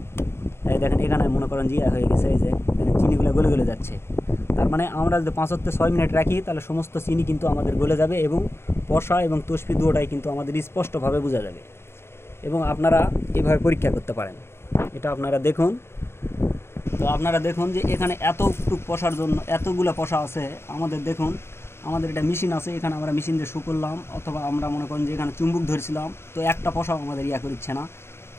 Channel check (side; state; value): right; late; 0.12 ms